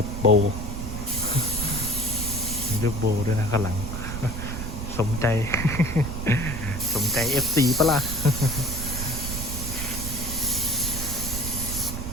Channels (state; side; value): noise; right; rumble, 5 dB below the sound